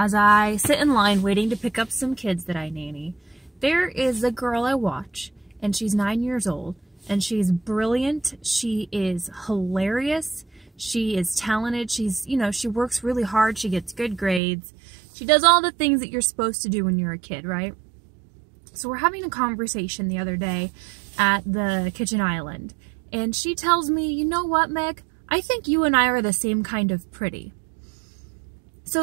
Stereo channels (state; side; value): drops out; left; at 14.4 s